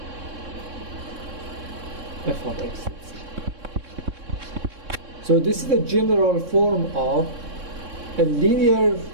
f of x. So this is the general form of a linear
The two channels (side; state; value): left; late; 3.6 ms